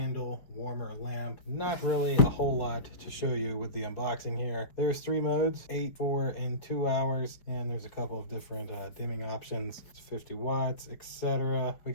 warmer lamp. Not really a whole lot to show you with the unboxing here. There's 3 modes, 8, 4, and 2 hours, and there's a couple of different dimming options. It's 50 watts, etc. We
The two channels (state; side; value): late; right; 5.2 ms